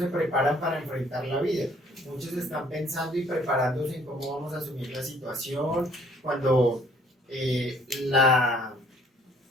preparan para enfrentar la vida. Muchos están pensando y preparándose en cómo vamos a asumir la situación, cuando la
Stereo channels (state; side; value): normal; both; correlation 0.60